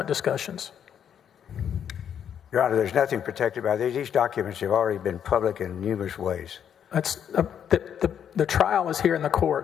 discussions. Your Honor, there's nothing protected by these. These documents have already been public in numerous ways. That's the trial is here in the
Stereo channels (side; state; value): right; quieter; 8.7 dB